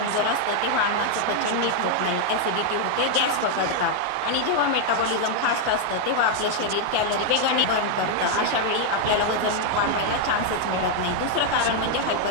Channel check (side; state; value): both; different; correlation 0.00